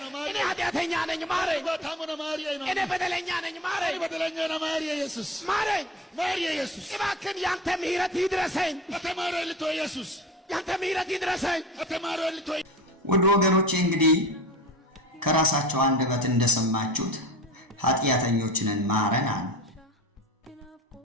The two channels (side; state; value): both; normal; correlation 0.35